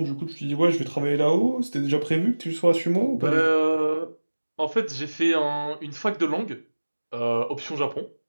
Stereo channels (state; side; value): inverted; both; correlation -1.00